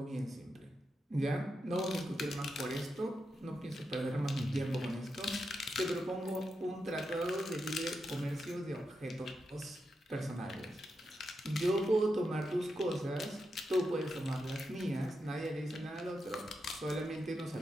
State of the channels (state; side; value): normal; both; correlation 0.86